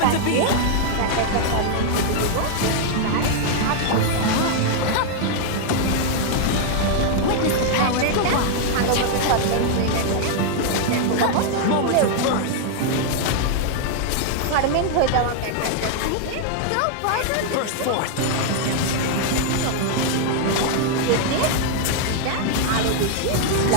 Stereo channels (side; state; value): both; different; correlation 0.00